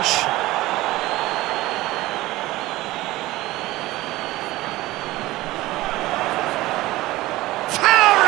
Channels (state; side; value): quieter; left; 18.0 dB